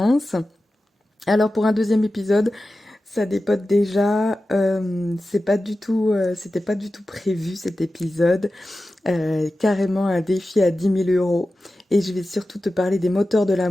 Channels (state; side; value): normal; both; correlation 0.94